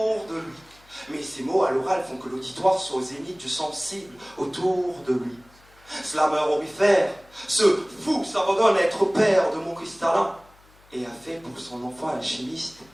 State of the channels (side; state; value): left; noise; hum, 28 dB below the sound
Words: de lui. Mais ces mots à l'oral font que l'auditoire soit au zénith du sensible autour de lui. Slammer aurifère, ce fou s'abandonne à être père de mots cristallins et a fait pour son enfant alchimiste